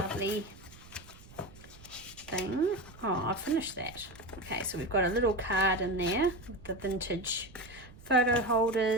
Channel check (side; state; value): right; noise; rumble, 20 dB below the sound